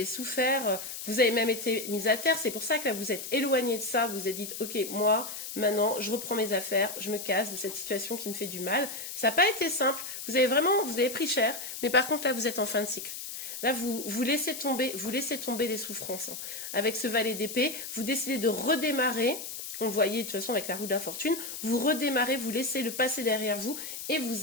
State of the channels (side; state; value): left; noise; hiss, 8 dB below the sound